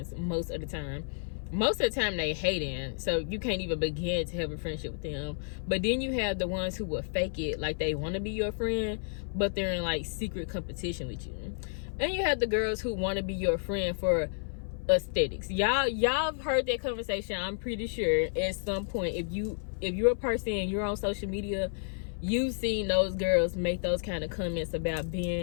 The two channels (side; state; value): right; silent; 55 dB below the other